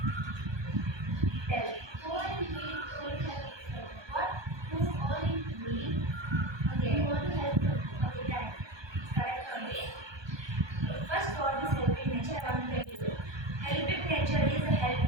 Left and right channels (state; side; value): late; left; 1.2 ms